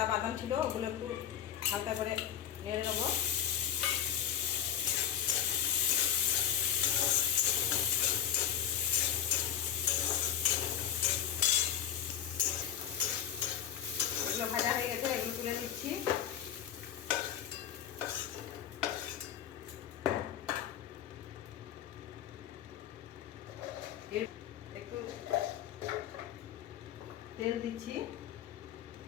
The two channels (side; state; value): right; quieter; 9.5 dB